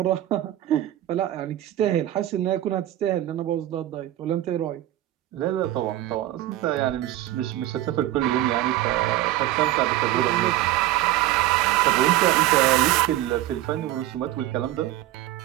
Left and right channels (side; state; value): left; quieter; 14.3 dB